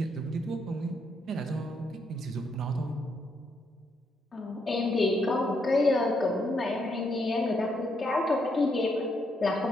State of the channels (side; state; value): both; normal; correlation 0.76